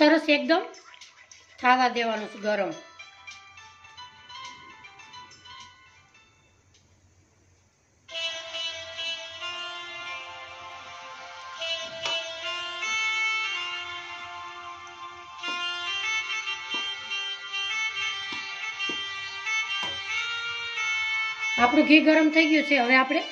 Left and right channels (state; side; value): identical; both; correlation 1.00